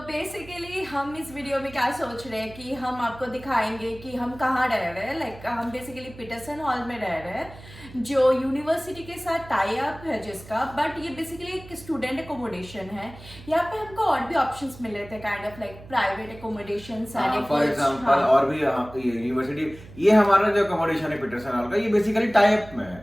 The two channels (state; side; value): noise; right; hum, 18 dB below the sound